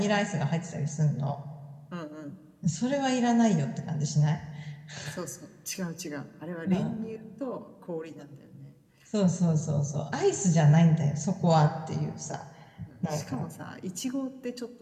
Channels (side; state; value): both; identical; correlation 1.00